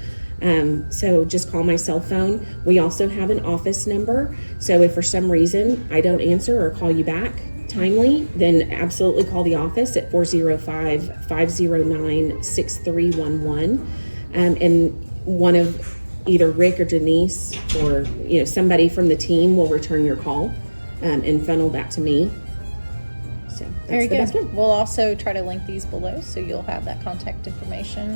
So just call my cell phone. We also have an office number. So if for some reason I don't answer or call you back timely, then absolutely call the office at 405-509-6311. And one of either Rick or Denise or somebody from the team will return your call and funnel that to me. So that's Very the good. best one. We'll also try to link these below so you'll have that contact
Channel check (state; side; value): inverted; both; correlation -1.00